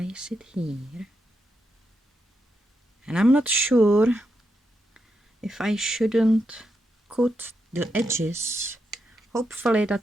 it here. And I'm not sure if I shouldn't cut the edges. Hopefully that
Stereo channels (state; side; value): normal; both; correlation 0.84